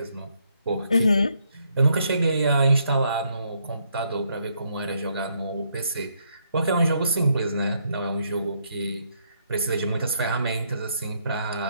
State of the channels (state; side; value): inverted; both; correlation -0.74